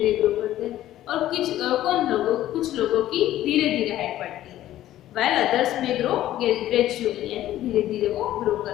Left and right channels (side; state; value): right; quieter; 13.6 dB